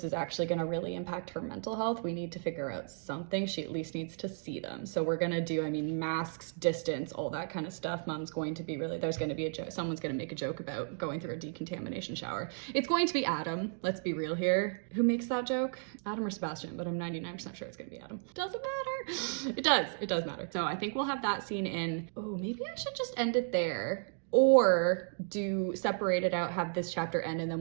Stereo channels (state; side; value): silent; left; 55 dB below the other